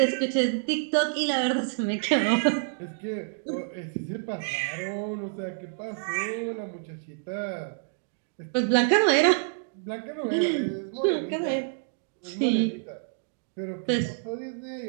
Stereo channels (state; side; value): silent; left; digital silence